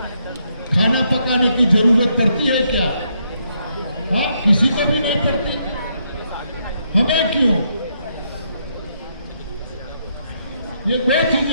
खाना पकाने की जरूरत पड़ती है क्या? हाँ, किसी को भी नहीं पड़ती। हमें क्यों? ये दो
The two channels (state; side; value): inverted; both; correlation -0.76